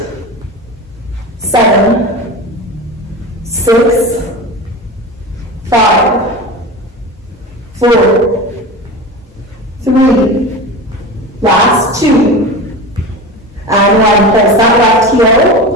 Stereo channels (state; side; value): normal; both; correlation 0.29